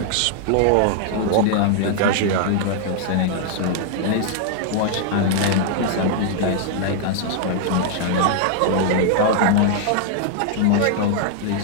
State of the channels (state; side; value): different; both; correlation 0.00